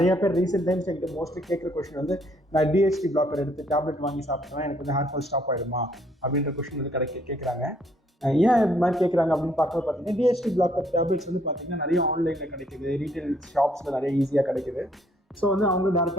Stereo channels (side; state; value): both; normal; correlation 0.66